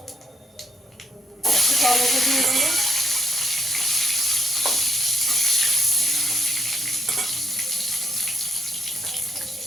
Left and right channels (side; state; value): both; normal; correlation 0.74